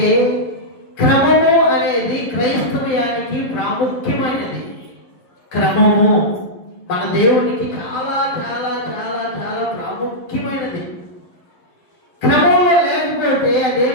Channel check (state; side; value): late; right; 11 ms